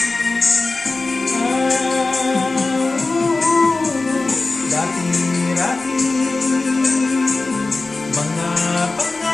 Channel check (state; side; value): quieter; right; 3.5 dB